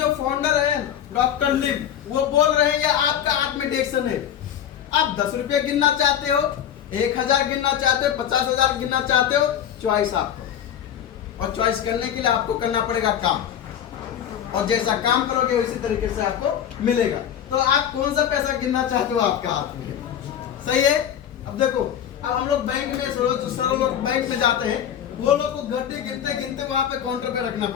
फाउंडर है डॉक्टर लिम, वो बोल रहे हैं आपका हाथ में डीएक्सन है। आप 10 रुपये गिनना चाहते हो, 1000 गिनना चाहते हो, 50,000 गिनना चाहते हो, चॉइस आपको। और चॉइस करने के लिए आपको करना पड़ेगा काम, और जैसा काम करोगे उसी तरीके से आपको मिलेगा। तो आप कौन सा पैसा गिनना चाहते हो? आपका हाथ में। सही है? अब देखो, अब हम लोग बैंक में लोग बैंक में जाते हैं, वो लोग को घंटे गिनते वहां पे काउंटर पे रखना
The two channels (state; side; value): quieter; right; 9.8 dB